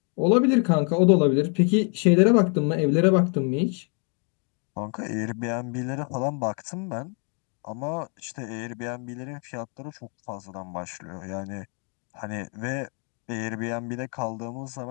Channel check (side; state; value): right; quieter; 39.2 dB